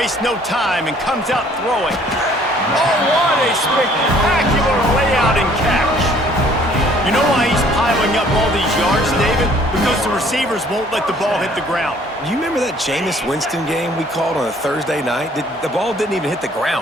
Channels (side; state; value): both; normal; correlation 0.58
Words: no time and comes out throwing. Oh, what a spectacular layout and catch. You know why he's piling up all these yards, David? Because the receivers won't let the ball hit the ground. You remember that Jameis Winston game we called on a Thursday night? The ball didn't even hit the